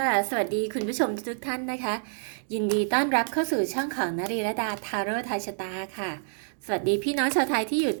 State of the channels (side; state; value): left; silent; digital silence